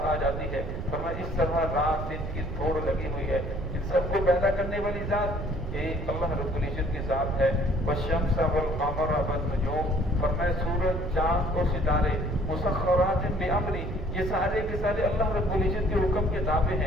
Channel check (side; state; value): right; noise; rumble, 5 dB below the sound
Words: آ جاتی ہے۔ فرمایا اس طرح رات دن کی دوڑ لگی ہوئی ہے۔ ان سب کو پیدا کرنے والی ذات ایک اللہ رب العزت کی ذات ہے۔ والشمس والقمر والنجوم، فرمایا سورج، چاند اور ستارے مسخرات بامری، یہ سارے کے سارے اللہ رب العزت کے حکم کے تابع